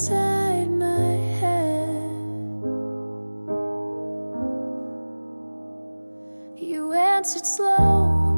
my head. You answered slow,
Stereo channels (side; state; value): both; inverted; correlation -1.00